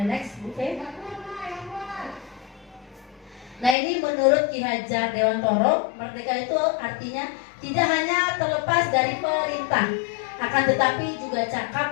next Bu Fe. Nah, ini menurut Ki Hajar Dewantoro, merdeka itu artinya tidak hanya terlepas dari perintah, akan tetapi juga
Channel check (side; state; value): right; drops out; at 3.8 s